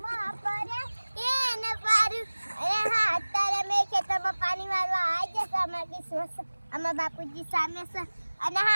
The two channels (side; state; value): both; inverted; correlation -1.00